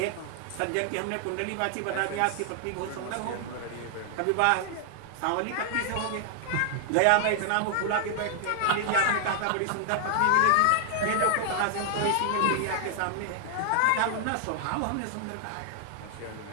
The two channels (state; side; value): different; both; correlation 0.00